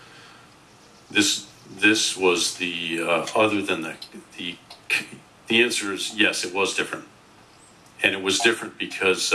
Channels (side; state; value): both; identical; correlation 1.00